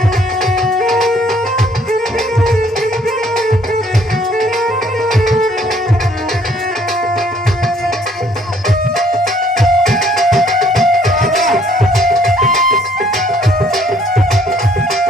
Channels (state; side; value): normal; both; correlation 0.62